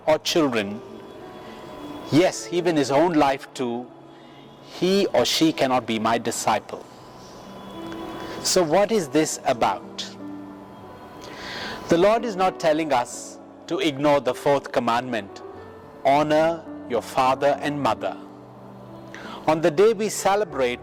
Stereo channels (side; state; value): both; identical; correlation 1.00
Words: or children, yes, even his own life too, he or she cannot be my disciple." So what is this about? The Lord is not telling us to ignore the fourth commandment, honor your father and mother. On the day we